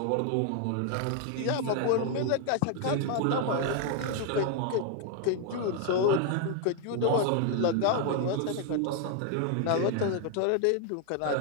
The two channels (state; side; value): different; both; correlation 0.00